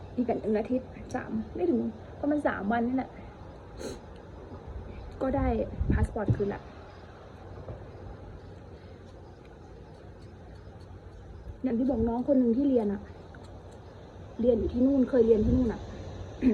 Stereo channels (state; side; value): identical; both; correlation 1.00